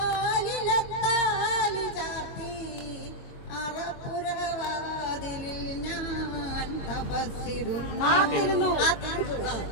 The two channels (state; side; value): late; right; 22 ms